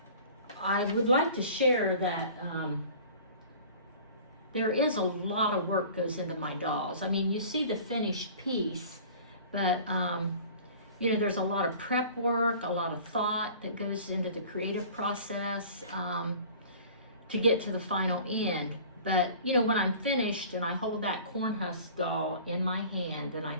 I would like to share that there is a lot of work goes into my dolls. I mean, you see the finished piece, but you know, there's a lot of prep work, a lot of thought that goes into the creative process to get to the final end. But, you know, when I'm finished and I hold that corn husk doll in my hand and I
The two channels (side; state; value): both; inverted; correlation -0.44